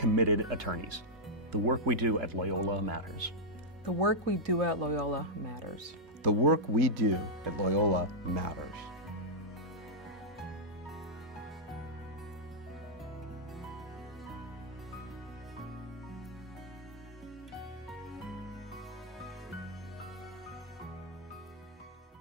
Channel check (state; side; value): normal; both; correlation -0.07